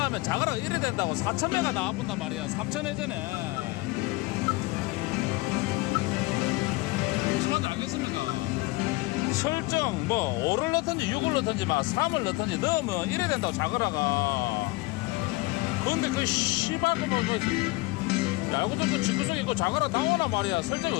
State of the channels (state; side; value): quieter; right; 22.1 dB